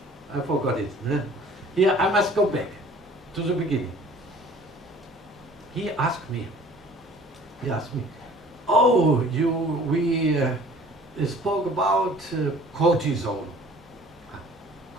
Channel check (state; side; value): normal; both; correlation 0.50